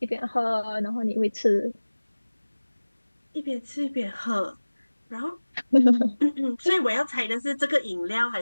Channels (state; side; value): inverted; both; correlation -1.00